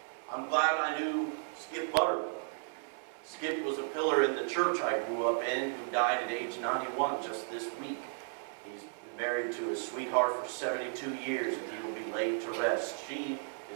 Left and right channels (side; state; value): left; silent; 55 dB below the other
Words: I'm glad I knew Skip Butterworth. Skip was a pillar in the church I grew up in, who died at age 91 just this week. He's been married to his sweetheart for 72 years, and he will be laid to rest. She,